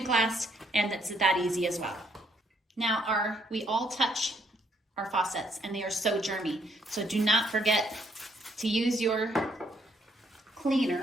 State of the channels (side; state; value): both; normal; correlation 0.70